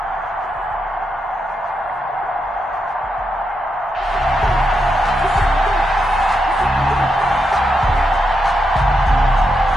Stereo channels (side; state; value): both; normal; correlation 0.83